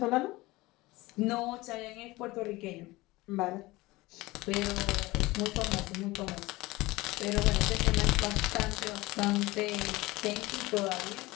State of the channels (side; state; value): right; quieter; 20.5 dB